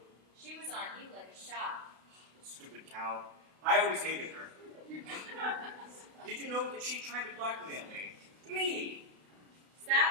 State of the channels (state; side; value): late; left; 32 ms